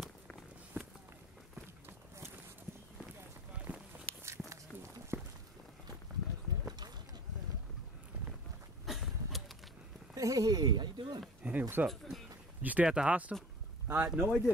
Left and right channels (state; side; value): normal; both; correlation 0.40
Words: Hey, how you doing? Hey, what's up? Did you stay at the hostel? No, I